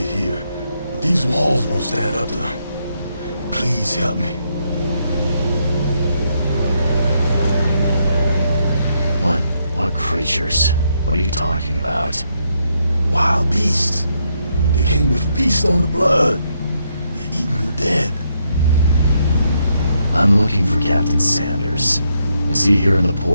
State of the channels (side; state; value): both; inverted; correlation -0.77